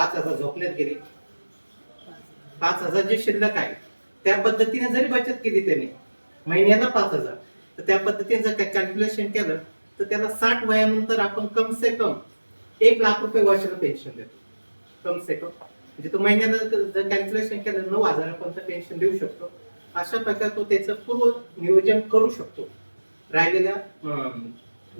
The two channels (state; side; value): inverted; both; correlation -1.00